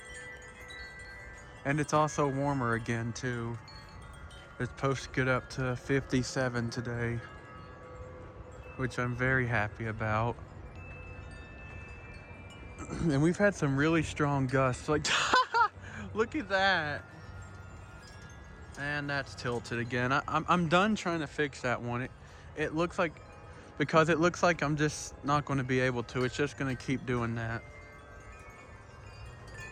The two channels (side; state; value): both; identical; correlation 1.00